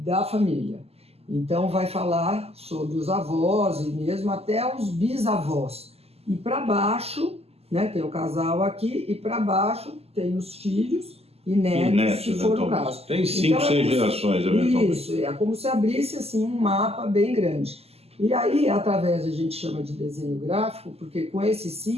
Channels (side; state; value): left; late; 0.29 ms